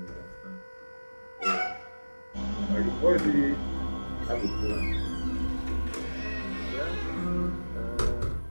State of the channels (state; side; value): inverted; both; correlation -1.00